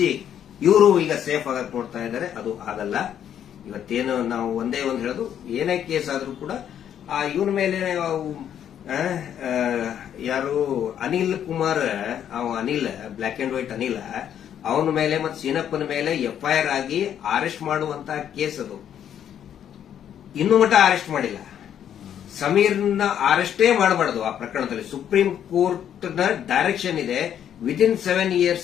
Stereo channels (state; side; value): quieter; right; 9.6 dB